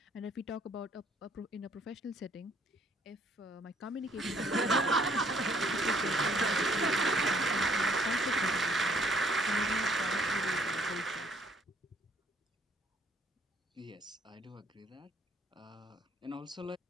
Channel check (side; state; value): both; normal; correlation 0.63